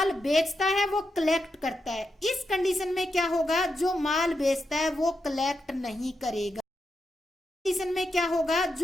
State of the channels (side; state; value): both; normal; correlation 0.86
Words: बेचता है वो कलेक्ट करता है। इस कंडीशन में क्या होगा, जो माल बेचता है वो कलेक्ट नहीं करेगा। कंडीशन में क्या होगा,